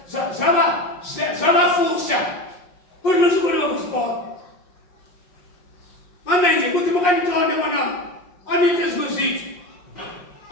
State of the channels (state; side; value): late; right; 5.5 ms